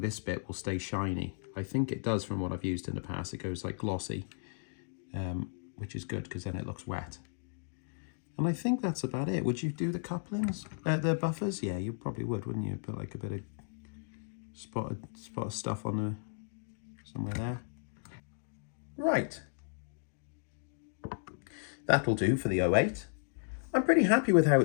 bit will stay shiny. I think it does from what I've used in the past. It goes like glossy, which is good because then it looks wet. And I think that's about it. Would you do the couplings, the buffers? Yeah, you probably would, wouldn't you? Put like a bit of spot of stuff on the somewhere there. Right. That'll do for the 08. I'm pretty happy with how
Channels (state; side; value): silent; right; digital silence